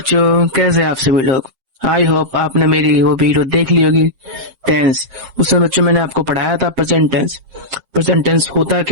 कैसे हैं आप सभी लोग। आई होप आपने मेरी वो वीडियो देख ली होगी टेंस। उसमें बच्चों मैंने आपको पढ़ाया था प्रेजेंट टेंस। प्रेजेंट टेंस होता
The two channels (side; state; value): left; late; 7.6 ms